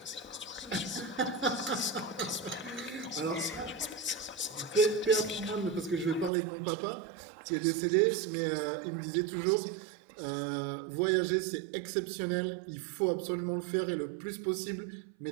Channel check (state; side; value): drops out; left; at 6.3 s